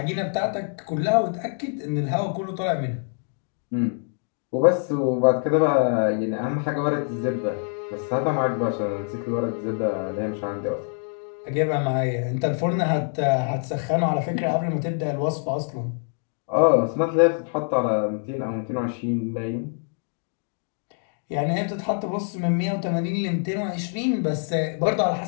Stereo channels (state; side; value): silent; right; 59 dB below the other